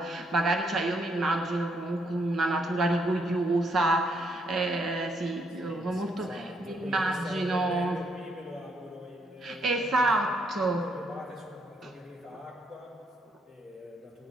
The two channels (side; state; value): both; normal; correlation 0.74